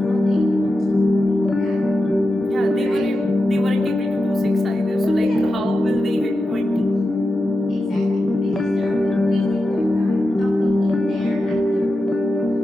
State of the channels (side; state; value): both; normal; correlation 0.90